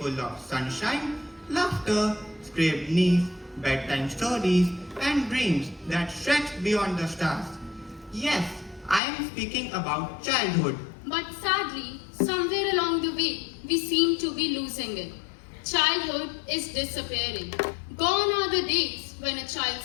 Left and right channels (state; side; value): drops out; right; at 9.0 s